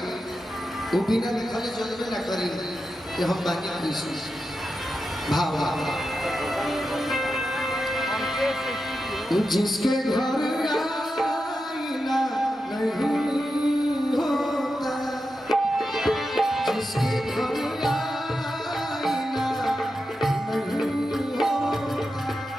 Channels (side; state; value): both; normal; correlation 0.89